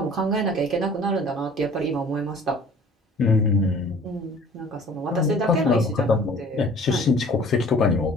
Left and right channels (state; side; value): normal; both; correlation 0.49